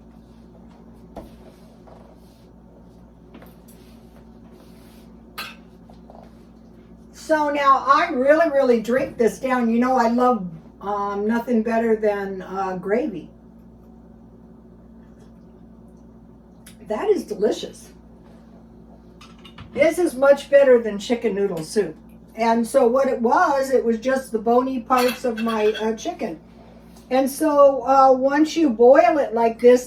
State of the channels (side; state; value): both; identical; correlation 1.00